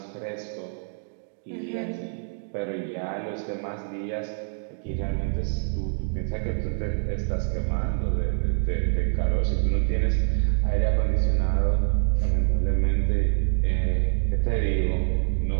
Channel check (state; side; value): silent; left; digital silence